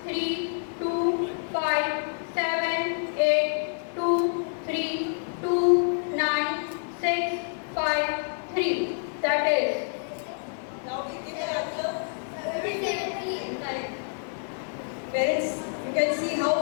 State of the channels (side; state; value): right; silent; digital silence